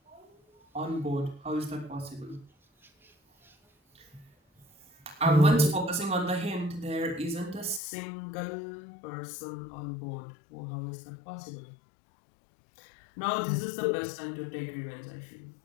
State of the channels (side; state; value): right; drops out; at 7.8 s